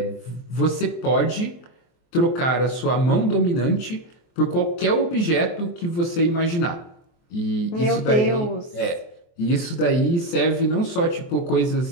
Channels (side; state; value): right; late; 23 ms